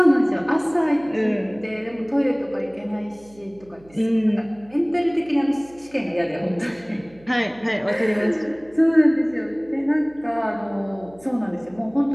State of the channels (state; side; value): noise; right; hum, 26 dB below the sound